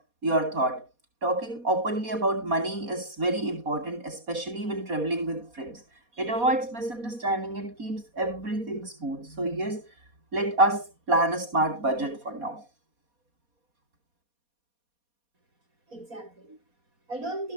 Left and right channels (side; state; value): left; late; 4.2 ms